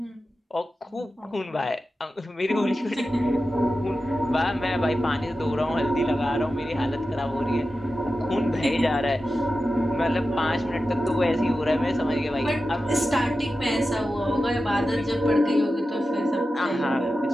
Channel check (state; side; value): normal; both; correlation 0.92